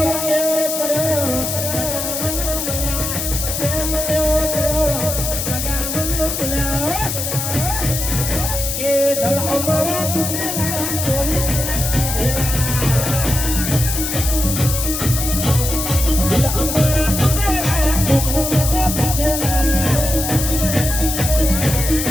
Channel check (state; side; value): noise; left; hiss, 3 dB below the sound